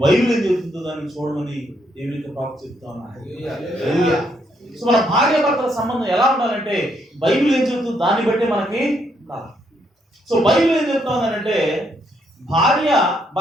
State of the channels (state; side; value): normal; both; correlation 0.74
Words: బైబిల్ ఏం చెప్తుందో దాన్ని చూడమని దేవునికి ప్రాప్తి చెప్తా ఉన్నా. సో మన భార్య భర్తల సంబంధం ఎలా ఉండాలంటే బైబిల్ ఏం చెప్తుందో దాన్ని బట్టి మనకి ఉండాలి. సో బైబిల్ ఏం చెప్తా ఉందంటే భార్య